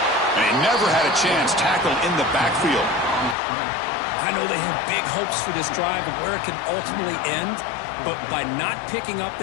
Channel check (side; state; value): right; drops out; at 3.4 s